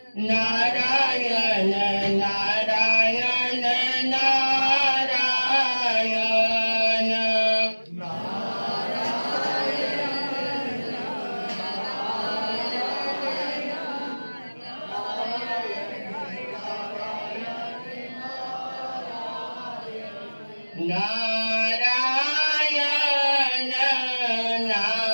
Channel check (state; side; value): inverted; both; correlation -1.00